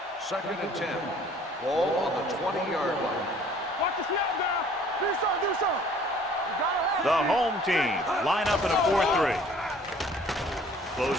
2nd and 10. Ball on the 20-yard line. Watch the snap now. Do something, do something. You gotta have The it. home team line up in a 4-3.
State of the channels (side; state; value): both; normal; correlation 0.54